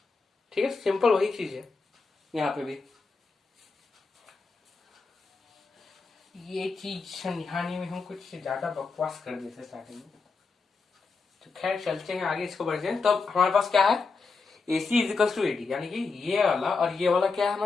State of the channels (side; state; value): right; quieter; 4.4 dB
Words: ठीक है, सिंपल वही चीज है यहाँ पे भी। ये चीज समझाने में हम कुछ ज्यादा बकवास कर देते स्टार्टिंग में, तो खैर चलते हैं आगे, इसको बढ़ते हैं। तो अब हमारे पास क्या है, AC is equal to AD, यानी कि ये वाला और ये वाला क्या है